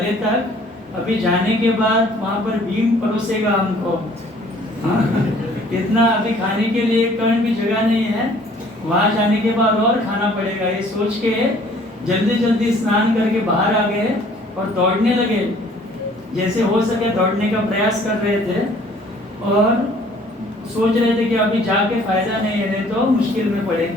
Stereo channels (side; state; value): both; normal; correlation 0.56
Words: तक, अभी जाने के बाद वहाँ पर भीम परोसेगा हमको इतना अभी खाने के लिए कण भी जगह नहीं है, वहाँ जाने के बाद और खाना पड़ेगा। ये सोच के जल्दी जल्दी स्नान करके बाहर आ गए और दौड़ने लगे, जैसे हो सके दौड़ने का प्रयास कर रहे थे और सोच रहे थे कि अभी जाके फायदा नहीं है, नहीं तो मुश्किल में